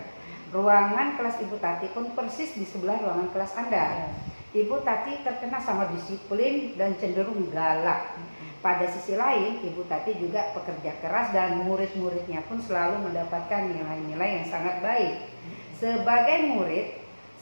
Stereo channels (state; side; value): inverted; both; correlation -1.00